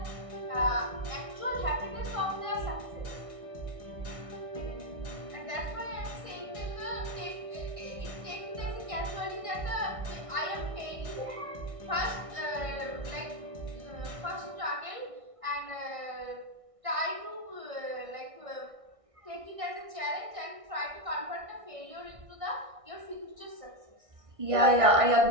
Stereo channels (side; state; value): left; late; 1.6 ms